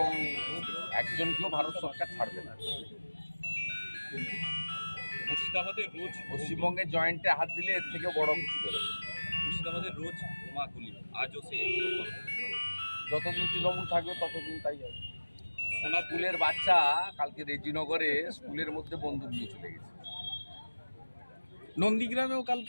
একজনকেও ভারত সরকার ছাড়বে না। মুর্শিদাবাদে রোজ পশ্চিমবঙ্গের জয়েন্টে হাত দিলে এর থেকে বড় কিছু বেরোবে। মুর্শিদাবাদে রোজ বোমাগুলি, আজও সে যতদিন তৃণমূল থাকবে ততদিন তাই হবে। সোনার স্কুলের বাচ্চা কালকে রেজিনগরে স্কুলের মধ্যে বন্দুক নিয়ে চলে গেছে। নন্দীগ্রামেও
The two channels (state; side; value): inverted; both; correlation -1.00